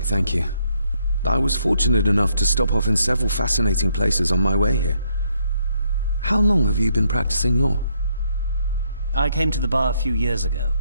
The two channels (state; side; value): inverted; both; correlation -0.74